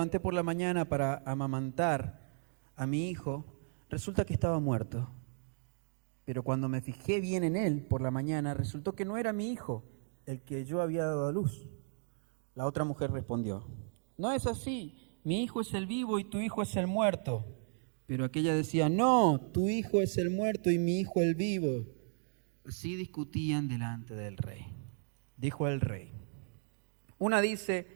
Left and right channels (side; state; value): left; silent; digital silence